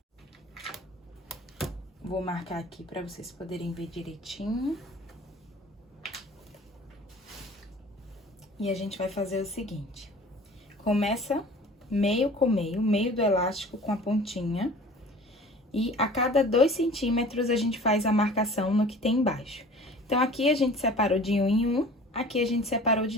Vou marcar aqui pra vocês poderem ver direitinho. E a gente vai fazer o seguinte. Começa meio com meio do elástico com a pontinha. E a cada 2 centímetros a gente faz a marcação no que tem embaixo. Então, aqui a gente separou de 1 em 1, aqui a gente separou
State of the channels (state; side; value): normal; both; correlation 0.45